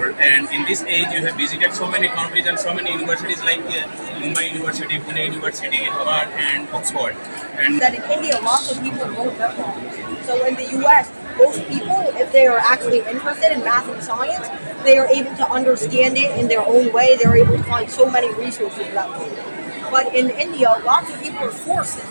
and in this age you have visited so many countries and so many universities like Mumbai University, Pune University, Harvard and Oxford. And that in India, lots of people don't memorize. So in the US, most people, if they are actually interested in math and science, they are able to understand it in their own way. They're able to find so many resources about it. But in India, lots of people are forced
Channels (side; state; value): both; inverted; correlation -1.00